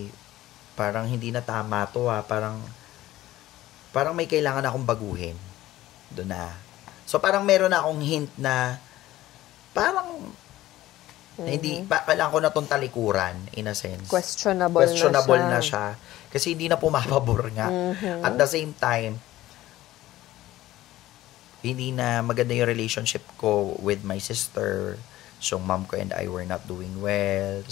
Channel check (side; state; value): right; quieter; 15.5 dB